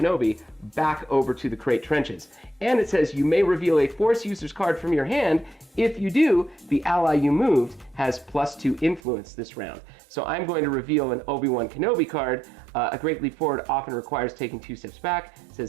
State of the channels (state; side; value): drops out; left; at 9.0 s